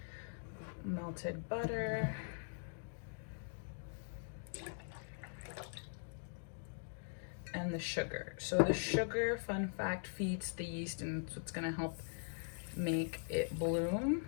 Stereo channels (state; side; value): silent; right; digital silence